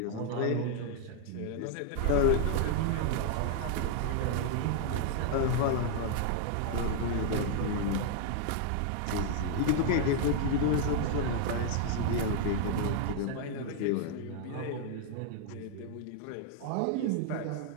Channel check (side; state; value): both; different; correlation 0.00